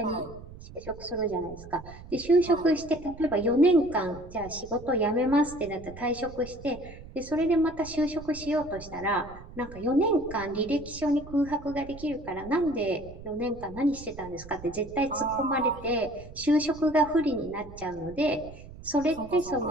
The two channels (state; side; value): noise; right; rumble, 16 dB below the sound